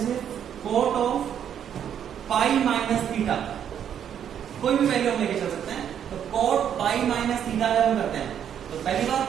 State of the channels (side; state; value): left; quieter; 9.1 dB